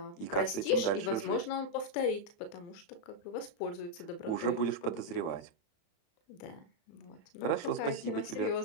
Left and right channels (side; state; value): right; late; 35 ms